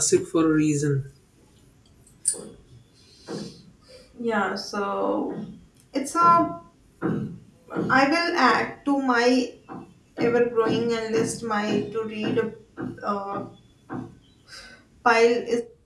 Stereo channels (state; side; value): identical; both; correlation 1.00